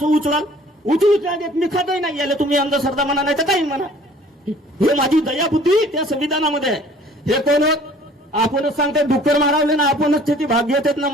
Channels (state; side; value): normal; both; correlation 0.52